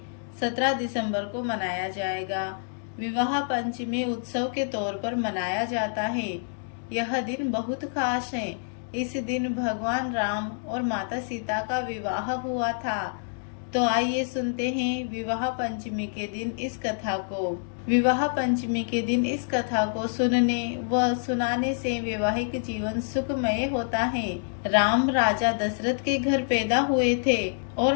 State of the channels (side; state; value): right; silent; digital silence